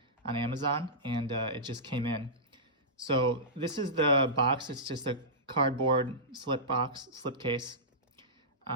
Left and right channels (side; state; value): both; normal; correlation -0.17